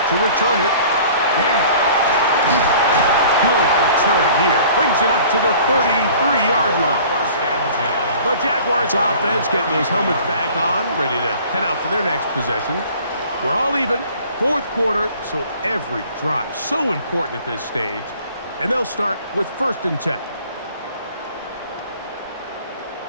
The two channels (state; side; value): inverted; both; correlation -0.49